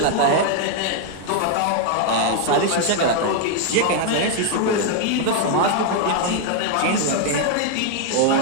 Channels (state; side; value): different; both; correlation 0.01